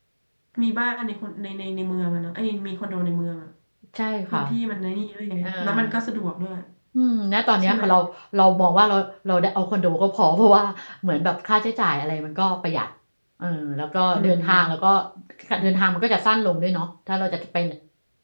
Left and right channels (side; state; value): both; inverted; correlation -1.00